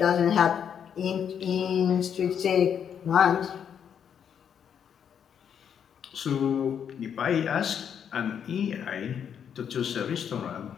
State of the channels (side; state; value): right; quieter; 8.1 dB